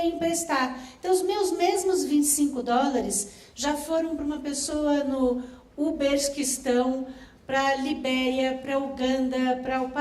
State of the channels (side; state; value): both; identical; correlation 1.00